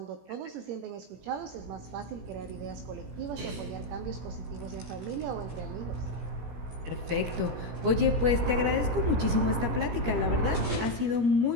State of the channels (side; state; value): left; late; 17 ms